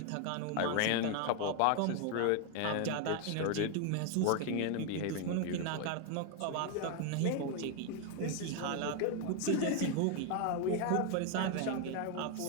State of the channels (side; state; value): both; different; correlation 0.01